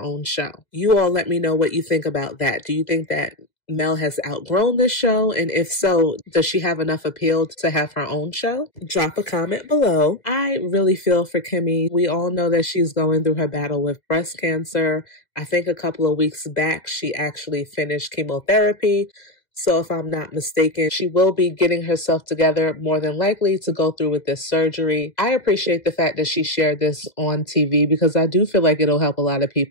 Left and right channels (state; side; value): late; right; 2.0 ms